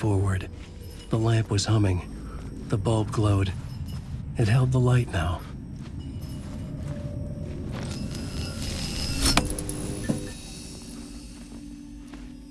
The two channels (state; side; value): identical; both; correlation 1.00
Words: the lamp was humming. The bulb glowed. It held the light now.